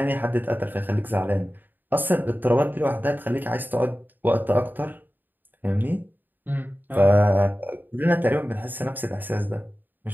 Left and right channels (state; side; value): late; left; 0.090 ms